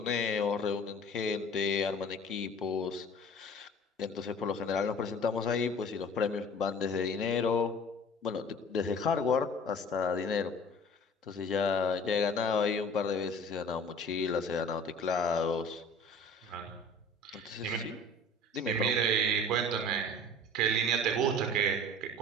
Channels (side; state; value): both; normal; correlation 0.45